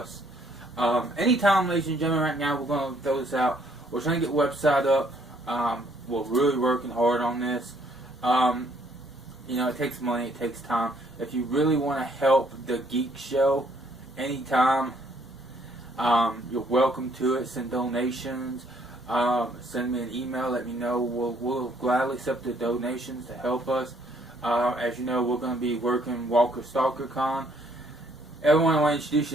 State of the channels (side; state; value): both; normal; correlation 0.66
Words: Anytime, ladies and gentlemen, right now, we're going to throw this out. We're trying to get a website up. We're really working hard on this. It takes money, it takes time. If you really want to help the Geek Show anytime, you're welcome to it. Send donations. Send me an email. Let me know. We'll gladly accept the donations to help us. As you know, we're going to be working Walker Stalker Con. Everyone, I want to introduce